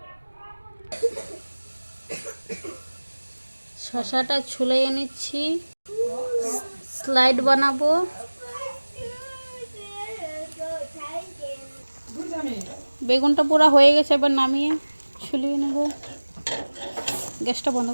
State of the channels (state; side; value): inverted; both; correlation -1.00